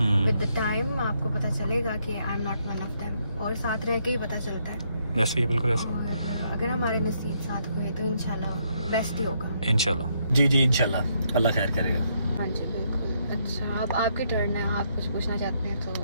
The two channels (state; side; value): inverted; both; correlation -0.74